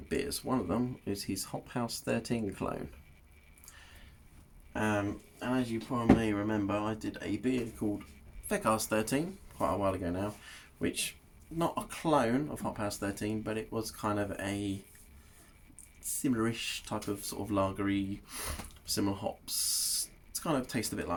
beers. One of them is his Hop House 13 clone. And as you probably may remember, I did a beer called Feck Arse 13 quite a while ago now, which not a clone of Hop House 13, but it was kind of a similar-ish type of sort of lagery, similar hops. It's kind of tastes a bit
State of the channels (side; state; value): both; identical; correlation 1.00